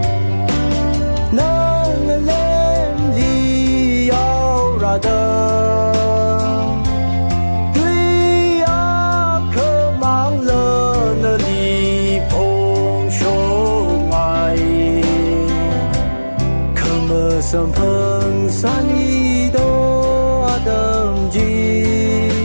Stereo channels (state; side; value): inverted; both; correlation -1.00